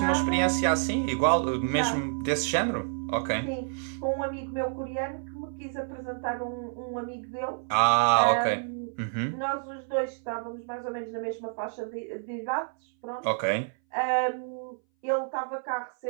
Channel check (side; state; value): left; silent; 59 dB below the other